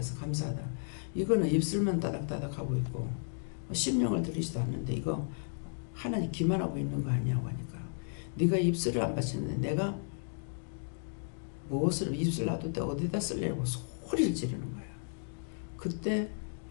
감사하다. 이거는 입술만 따닥따닥 하고 있고 심령을 들이지도 않는데 이거 하나님 기만하고 있는 거 아니냐고 하니까 네가 입술을 안 바치는데 내가 무엇을 입술 놔둘 때 어디다 쓰려고 소리를 지르는 거야. 그때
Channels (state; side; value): silent; right; digital silence